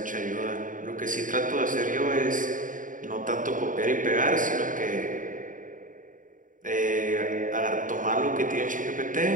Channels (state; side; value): late; left; 0.38 ms